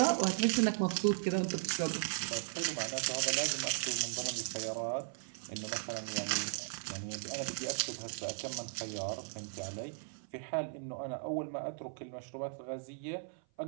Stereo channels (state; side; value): silent; left; 53 dB below the other